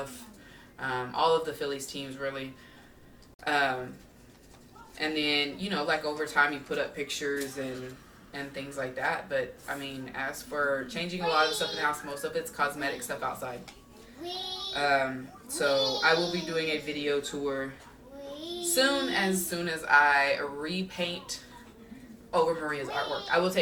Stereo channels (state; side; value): identical; both; correlation 1.00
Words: all of the Phillies teams really. And then, like over time you put up pictures and things like that. But I mean, as for changing a lot of the stuff in the house, most of it's cosmetic stuff outside. So I will be doing a video tour soon as I repaint over Maria's artwork. I will